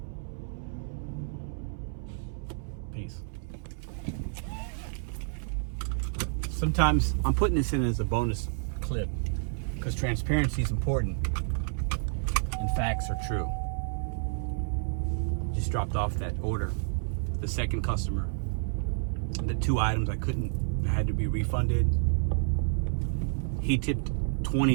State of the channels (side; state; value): left; silent; 58 dB below the other